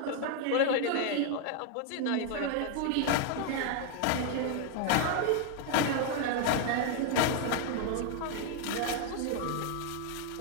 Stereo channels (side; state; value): both; different; correlation 0.00